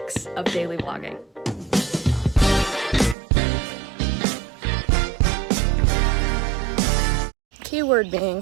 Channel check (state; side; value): drops out; left; at 3.2 s